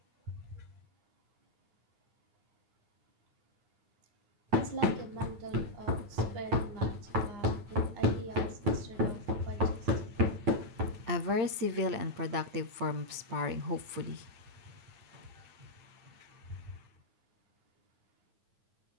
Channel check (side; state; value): left; late; 8.8 ms